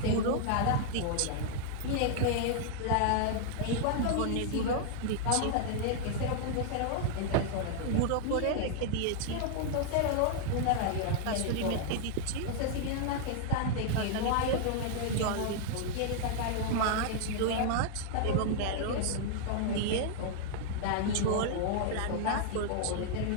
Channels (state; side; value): different; both; correlation -0.01